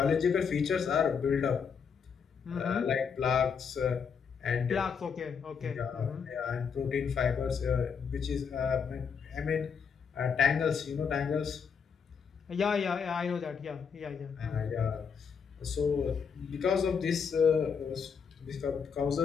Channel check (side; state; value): right; quieter; 6.4 dB